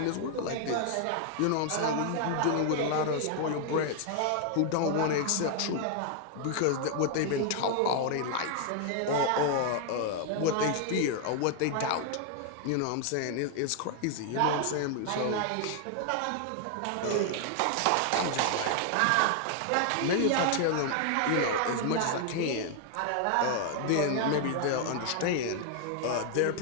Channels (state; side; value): different; both; correlation 0.00